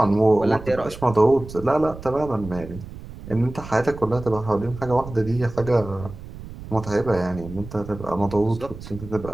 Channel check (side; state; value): right; noise; rumble, 13 dB below the sound